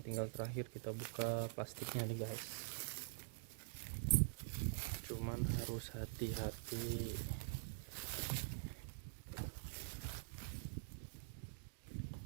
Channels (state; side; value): silent; left; digital silence